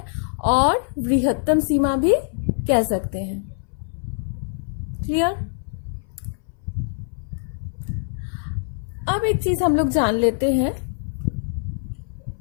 और वृहत्तम सीमा भी कह सकते हैं। क्लियर? अब एक चीज हम लोग जान लेते हैं,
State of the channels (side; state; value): right; silent; 62 dB below the other